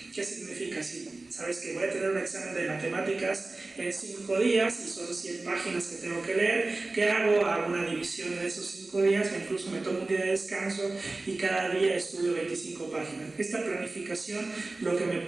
¿Qué significa? Si sabes que voy a tener un examen de matemáticas en 5 días y son 100 páginas que tengo que leer, ¿qué hago? Hago una división en esos 5 días, o incluso me tomo un día de descanso y cada día estudio 25 páginas. Esta planificación lo que me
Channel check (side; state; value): left; quieter; 3.2 dB